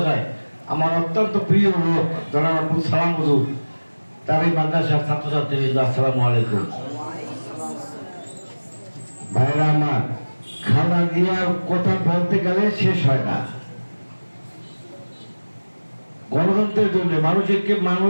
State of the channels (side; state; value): both; inverted; correlation -1.00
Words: আমার অত্যন্ত প্রিয় লোক জনাব আব্দুল সালাম হুজুর, তার এই মাদ্রাসার ছাত্রছাত্রীবৃন্দ, আসসালামু আলাইকুম। ভাইরা আমার, খালেদা জিয়ার কথা বলতে গেলে শেষ হয় না। গণতন্ত্রের জন্য মানুষকে